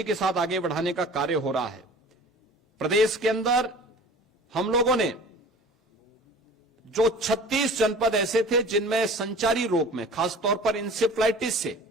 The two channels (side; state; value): both; normal; correlation 0.42